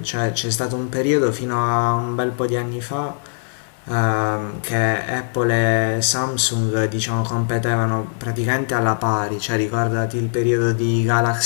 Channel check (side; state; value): right; silent; digital silence